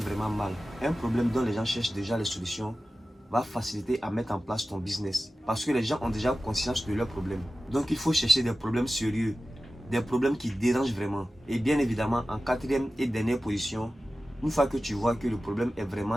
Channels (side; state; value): both; normal; correlation 0.95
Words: mal. Un problème dont les gens cherchent déjà les solutions va faciliter à mettre en place ton business. Parce que les gens ont déjà conscience de leurs problèmes. Donc il faut chercher des problèmes sérieux. Des problèmes qui dérangent vraiment. Et bien évidemment, en quatrième et dernière position, une fois que tu vois que le problème est